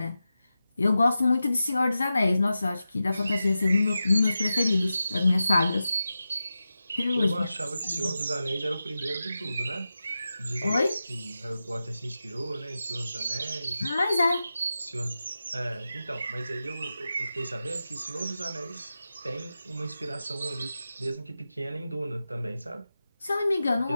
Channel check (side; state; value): both; inverted; correlation -0.92